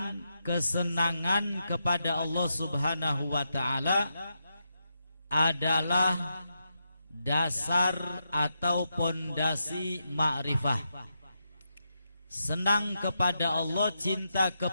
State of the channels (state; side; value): inverted; both; correlation -0.84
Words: kesenangan kepada Allah Subhanahu wa taala adalah dasar atau pondasi ma'rifah. Senang kepada Allah, cinta